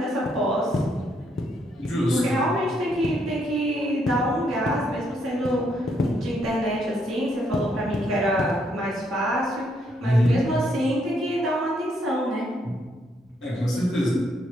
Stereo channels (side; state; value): both; normal; correlation 0.74